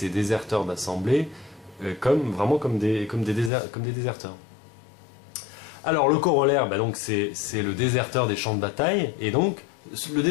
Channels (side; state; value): right; drops out; at 3.5 s